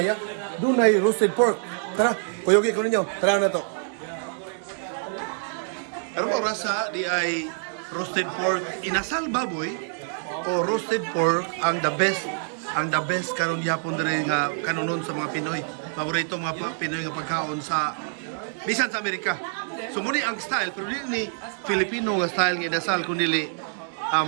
dunay roasted pork. Tara, kuyogi ko ninyo. Tara na to. Ang rasa di ay roasted pork inasal baboy o roasted pork ang the best karon gyapon diri nga kanunon sa mga Pinoy. Paborito mga Pinoy nga pagkaon sa bisan sa Amerika. So mo ni ang style pero dili ni Filipino nga style nga inasal kundi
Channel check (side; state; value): left; silent; digital silence